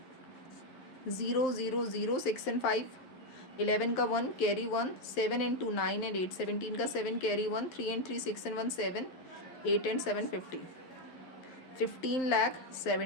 0,0,0,6 एंड 5, 11 का 1 कैरी 1, 7 एंड 2 9 एंड 8, 17 का 7 carry 1, 3 and 3 6 and 1 7, 8 and 7 15,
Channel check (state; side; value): late; right; 11 ms